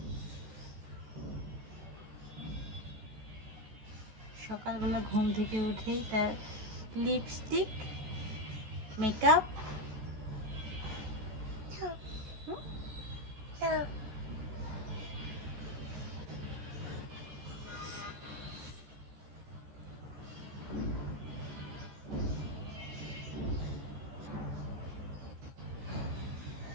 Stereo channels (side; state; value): left; late; 14 ms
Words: সকালবেলা ঘুম থেকে উঠেই তার লিপস্টিক মেকআপ